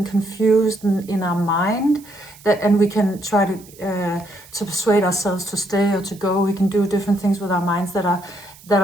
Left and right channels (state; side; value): noise; right; hiss, 22 dB below the sound